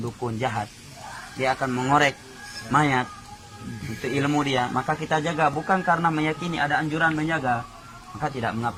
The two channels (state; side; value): identical; both; correlation 1.00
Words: jahat, dia akan mengorek mayat untuk ilmu dia, maka kita jaga bukan karena meyakini ada anjuran menjaga, maka tidak